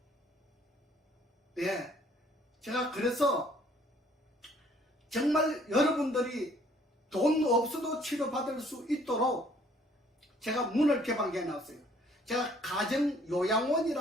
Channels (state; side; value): normal; both; correlation 0.60